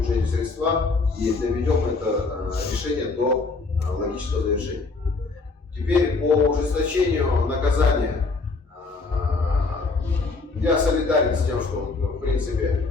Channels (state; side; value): quieter; right; 3.9 dB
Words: средства и доведем это решение до логического завершения. Теперь по ужесточению наказания. Я солидарен с тем, что в